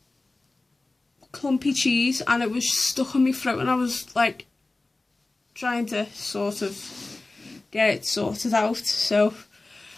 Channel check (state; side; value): quieter; right; 3.2 dB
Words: clumpy cheese, and it was stuck in my throat, and I was like trying to sort of get it sorted out. So